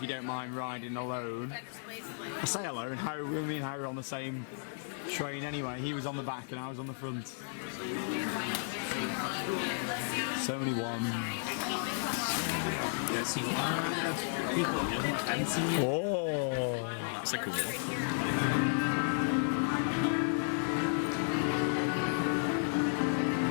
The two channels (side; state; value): right; silent; digital silence